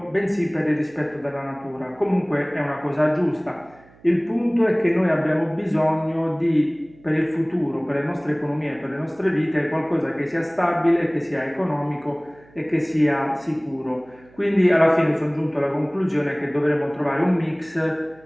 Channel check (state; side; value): noise; right; hum, 27 dB below the sound